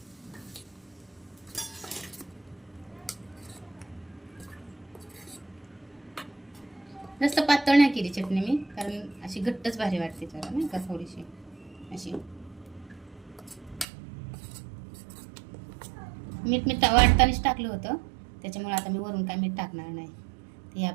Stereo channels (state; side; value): drops out; left; at 13.9 s